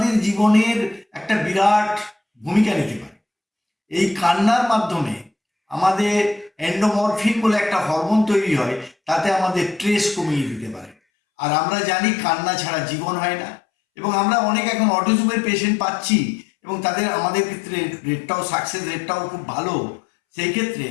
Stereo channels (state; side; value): drops out; right; at 11.0 s